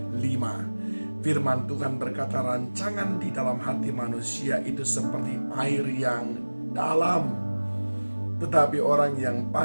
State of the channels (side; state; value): both; inverted; correlation -1.00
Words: 5. Firman Tuhan berkata, rancangan di dalam hati manusia itu seperti air yang dalam, tetapi orang yang